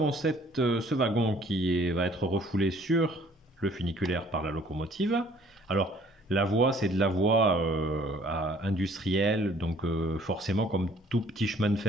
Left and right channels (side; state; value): both; normal; correlation 0.58